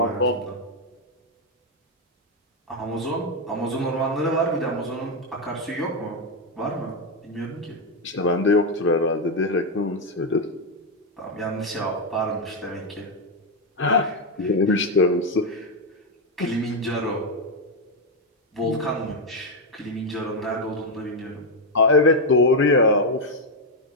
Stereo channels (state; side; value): normal; both; correlation 0.04